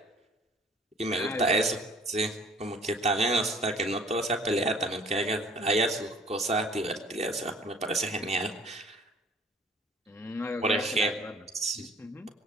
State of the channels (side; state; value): both; normal; correlation 0.53